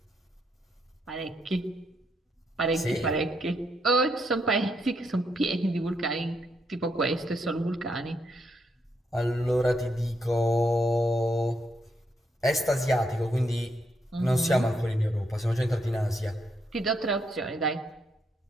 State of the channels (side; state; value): both; normal; correlation 0.77